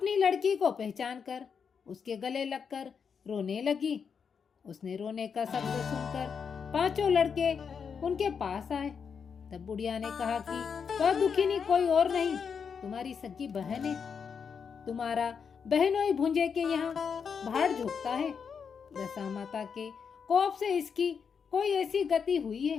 लड़की को पहचान कर उसके गले लगकर रोने लगी। उसने रोने का शब्द सुनकर 5 लड़के उनके पास आए। तब बुढ़िया ने कहा कि वह दुखिनी कोई और नहीं, तुम्हारी सगी बहन है। तुम्हारा बहनोई भुंजे के यहाँ भाड़ झोंकता है। दशा माता के कोप से इसकी कोई ऐसी गति हुई है।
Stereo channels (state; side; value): quieter; right; 6.4 dB